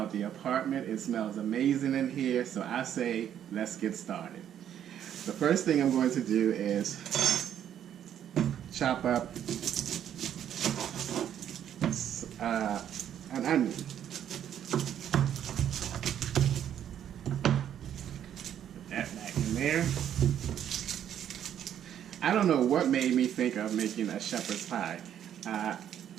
the apartment. It smells amazing in here, so I say let's get started. The first thing I'm going to do is chop up an onion. Put that back in there. I don't know what made me think of making a shepherd's pie. I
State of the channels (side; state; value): left; quieter; 10.0 dB